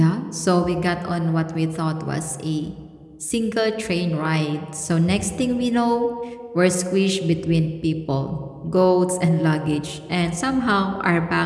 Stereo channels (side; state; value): both; identical; correlation 1.00